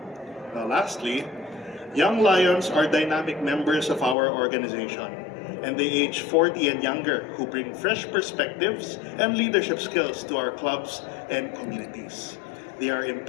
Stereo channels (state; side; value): drops out; right; at 4.2 s